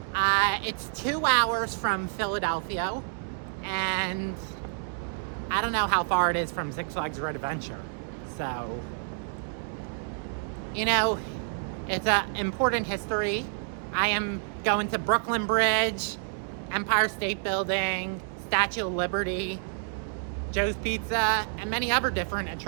It's 2 hours from Philadelphia, and I don't know how far it is from Six Flags Road Adventure. So, you know, it's an important history. I am going to Brooklyn Bridge, Empire State Building, Statue of Liberty, Joe's Pizza, and many other different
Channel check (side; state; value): left; silent; digital silence